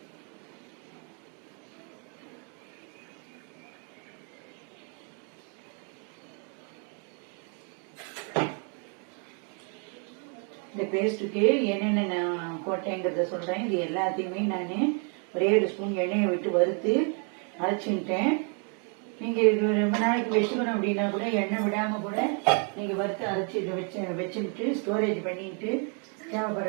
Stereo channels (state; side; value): quieter; left; 39.5 dB